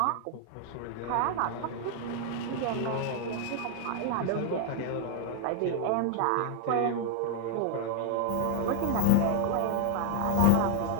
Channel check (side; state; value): both; different; correlation 0.00